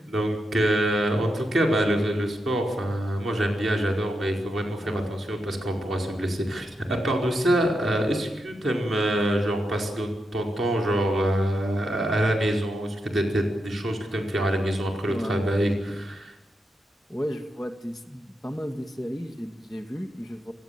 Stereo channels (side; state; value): both; normal; correlation 0.85